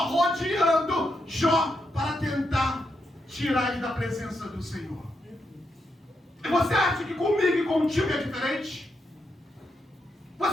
Jó para tentar tirar ele da presença do Senhor. E você acha que comigo e contigo é diferente?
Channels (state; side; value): normal; both; correlation 0.82